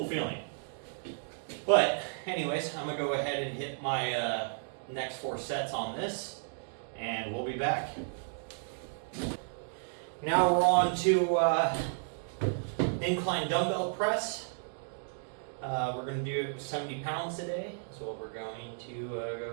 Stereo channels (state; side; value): silent; left; digital silence